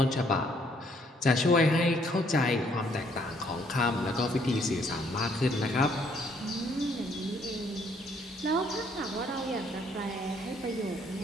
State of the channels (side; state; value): both; normal; correlation 0.66